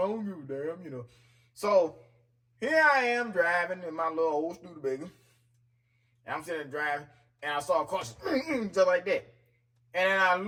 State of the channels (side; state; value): both; identical; correlation 1.00